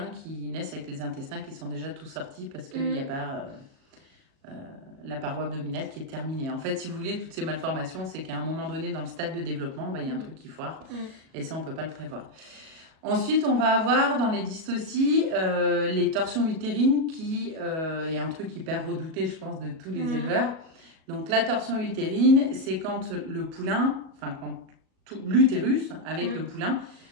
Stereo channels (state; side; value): late; left; 37 ms